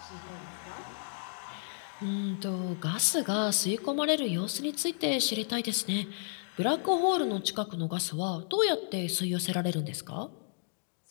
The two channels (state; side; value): silent; right; digital silence